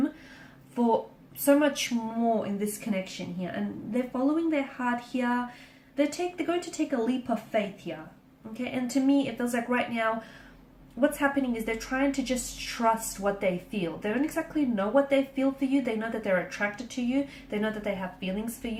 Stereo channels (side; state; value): both; identical; correlation 1.00